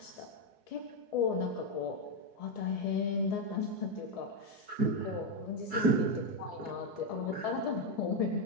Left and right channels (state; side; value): late; left; 4.7 ms